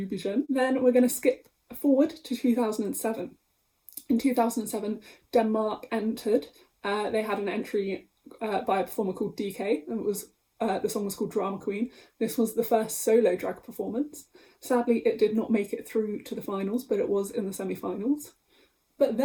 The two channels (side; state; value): both; identical; correlation 1.00